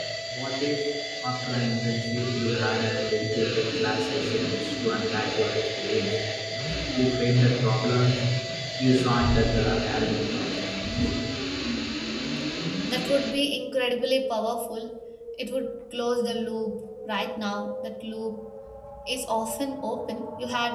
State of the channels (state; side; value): identical; both; correlation 1.00